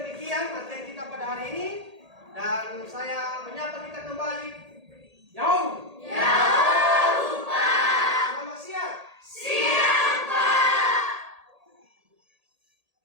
materi kita pada hari ini, dan saya menyapa kita kembali. Jauh.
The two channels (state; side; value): late; left; 1.8 ms